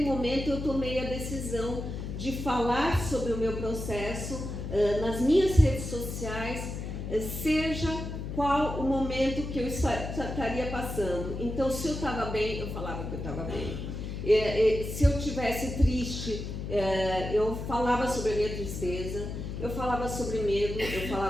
momento eu tomei a decisão de falar sobre o meu processo nas minhas redes sociais, seja qual o momento que eu estaria passando. Então, se eu estava bem, eu falava que eu estava bem. Se eu estivesse triste, eu falava sobre a minha tristeza, eu falava sobre medo, eu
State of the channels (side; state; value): left; noise; hum, 6 dB below the sound